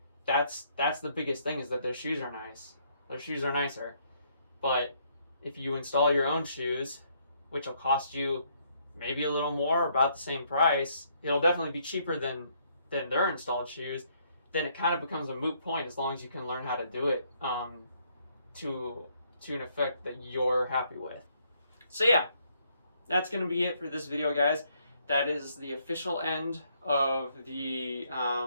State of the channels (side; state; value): both; inverted; correlation -0.70